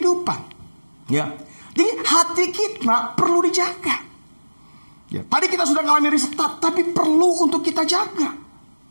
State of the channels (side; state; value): both; inverted; correlation -1.00